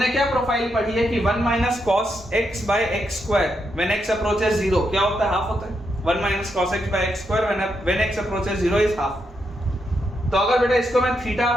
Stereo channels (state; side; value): normal; both; correlation 0.81